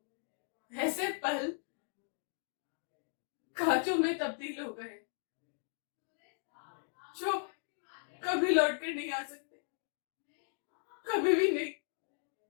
ऐसे पल कांचों में तब्दील हो गए जो कभी लौट कर नहीं आ सकते, कभी भी नहीं।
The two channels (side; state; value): right; silent; digital silence